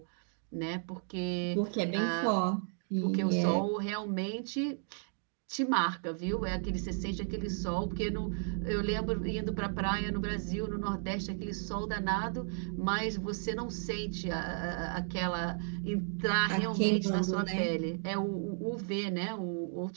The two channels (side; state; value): left; silent; 55 dB below the other